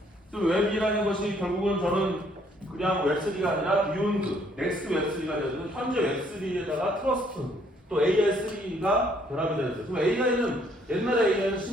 또 웹이라는 것이 결국은 저는 그냥 웹3가 아니라 비욘드, 넥스트 웹3가 되어서 현재 웹3에다가 트러스트, 또 AI3가 결합이 되었어요. 그럼 AI는 옛날에 AI는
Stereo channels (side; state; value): both; normal; correlation 0.65